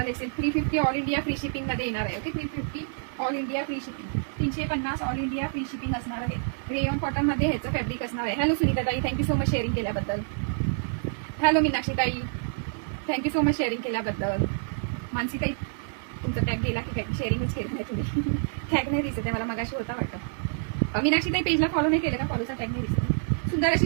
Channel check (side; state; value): left; silent; digital silence